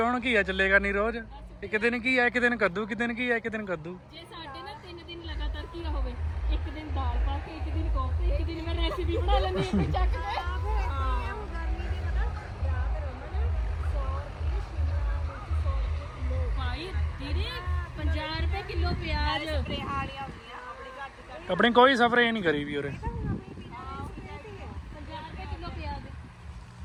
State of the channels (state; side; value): identical; both; correlation 1.00